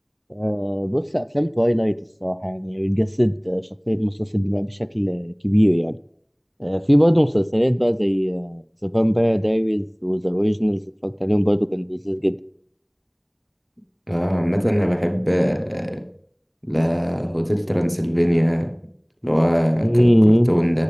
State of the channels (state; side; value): identical; both; correlation 1.00